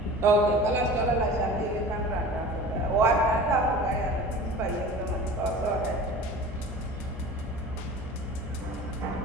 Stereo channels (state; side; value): noise; left; hum, 11 dB below the sound